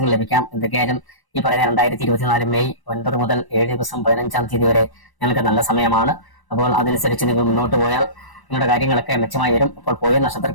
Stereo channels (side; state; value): right; late; 1.0 ms